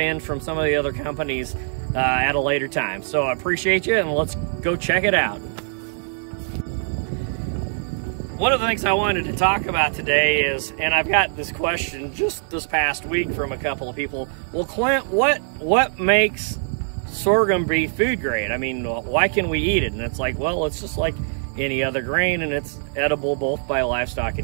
from some of the other companies at a later time. So I appreciate you, and let's go check it out. One of the things I wanted to talk about today is, and I've got this question just this past week from a couple of people, well, Clint, what makes sorghum be food grade? I mean, why can we eat it? And it's like, well, it's just like any other grain, and it's edible both by livestock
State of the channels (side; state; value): left; silent; 60 dB below the other